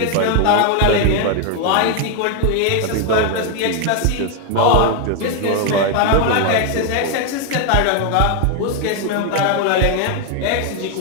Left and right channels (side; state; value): both; different; correlation 0.01